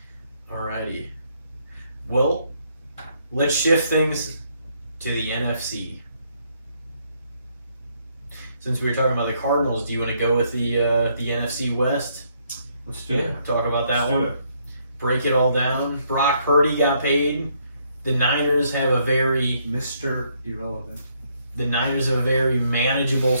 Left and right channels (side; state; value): both; inverted; correlation -0.72